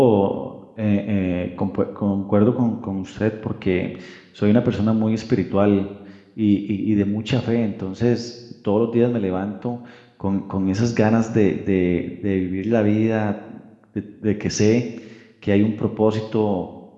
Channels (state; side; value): identical; both; correlation 1.00